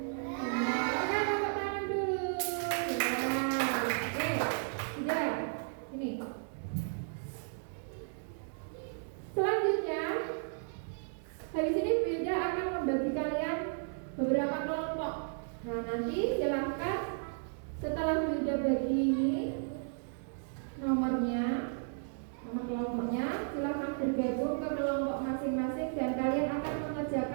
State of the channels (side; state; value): left; silent; digital silence